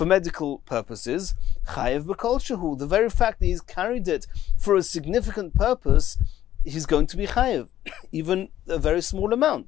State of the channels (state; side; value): quieter; right; 12.4 dB